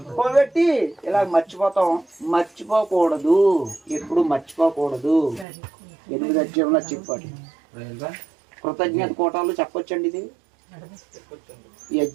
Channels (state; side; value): drops out; left; at 5.5 s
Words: పోబెట్టి ఇలా మర్చిపోతాం. మర్చిపోకూడదు, ఎప్పుడు మర్చిపోకూడదు. 8 అధ్యాయంలో చెప్పాడు. కృతజ్ఞత కోటాలు చెప్పొచ్చండి. ఇది ఈ